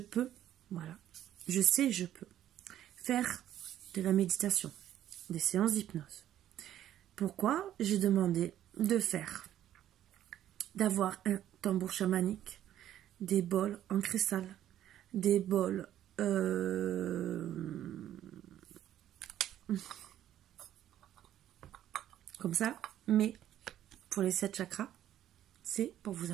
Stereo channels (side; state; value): left; quieter; 11.8 dB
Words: voilà, je sais, je peux faire de la méditation, des séances d'hypnose. Pourquoi j'ai demandé d'avoir un tambour chamanique, des bols en cristal, des bols comme ça, mais pour les 7 chakras, c'est pour vous